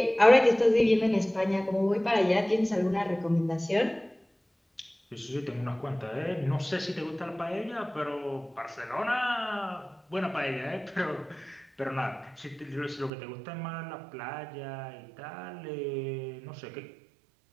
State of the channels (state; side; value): drops out; left; at 13.1 s